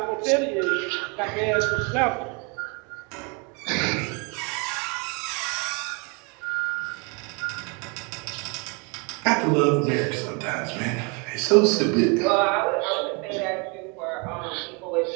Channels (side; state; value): left; quieter; 31.7 dB